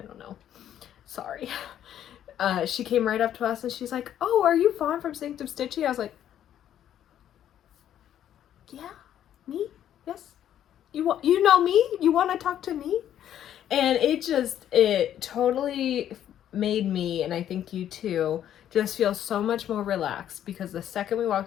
know. Sorry. She came right up to us and she's like, "Oh, are you Fawn from Sanctum Stitchy?" I was like, "Yeah, me? Yes. You know me? You want to talk to me?" And it totally made me, and I think you too, just feel so much more relaxed, because the second we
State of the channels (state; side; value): quieter; right; 10.7 dB